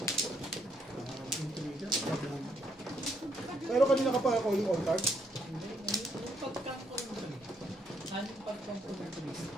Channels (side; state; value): both; normal; correlation 0.73